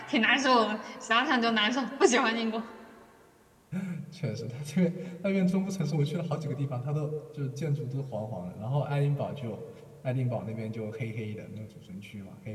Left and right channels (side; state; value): both; identical; correlation 1.00